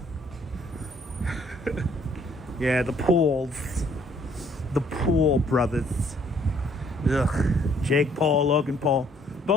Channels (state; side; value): normal; both; correlation 0.63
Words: Yeah, the Pauls. The Paul brothers. Ugh. Jake Paul, Logan Paul.